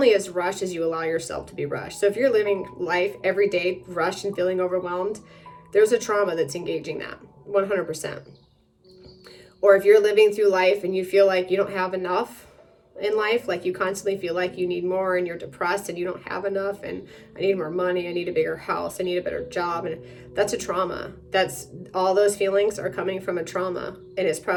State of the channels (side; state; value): both; identical; correlation 1.00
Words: as rushed as you allow yourself to be rushed. So if you're living life every day rushed and feeling overwhelmed, there's a trauma that's engaging that 100%. Or if you're living through life and you feel like you don't have enough in life, like you constantly feel like you need more and you're depressed and you don't have enough, and I need more money, I need a bigger house, I need a better job, and that's a trauma. That's all those feelings are coming from a trauma, and it's